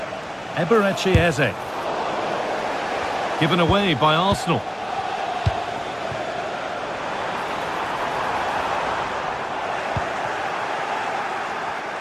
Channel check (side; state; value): both; identical; correlation 1.00